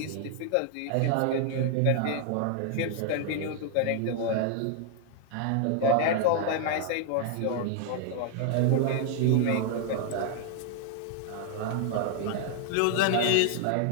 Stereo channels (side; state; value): both; different; correlation 0.00